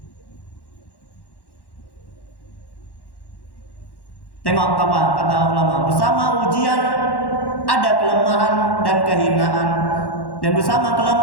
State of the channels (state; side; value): late; right; 1.1 ms